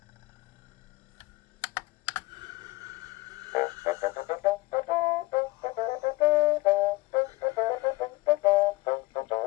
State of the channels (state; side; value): quieter; right; 20.4 dB